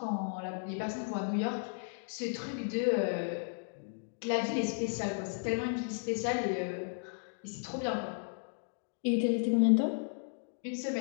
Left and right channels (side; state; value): right; silent; digital silence